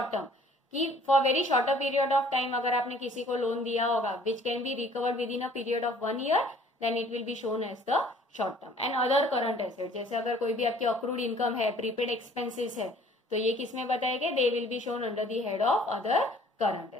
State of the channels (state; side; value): normal; both; correlation 0.55